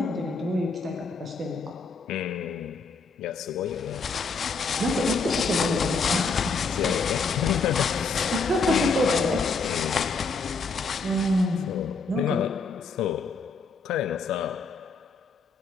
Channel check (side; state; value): right; quieter; 4.3 dB